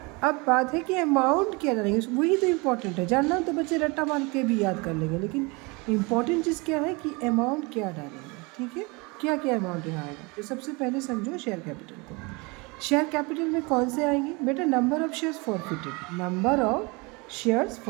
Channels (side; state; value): left; quieter; 27.6 dB